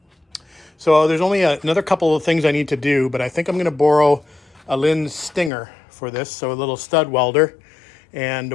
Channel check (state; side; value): drops out; right; at 5.5 s